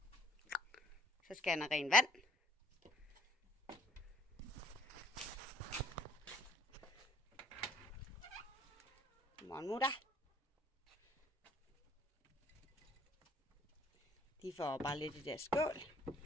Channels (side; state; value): both; normal; correlation 0.59